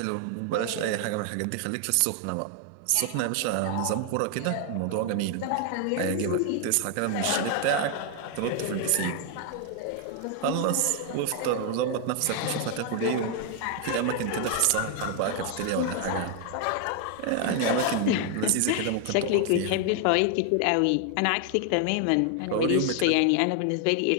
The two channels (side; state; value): both; different; correlation 0.00